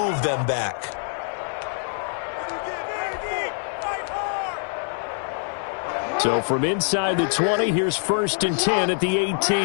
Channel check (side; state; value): right; silent; 62 dB below the other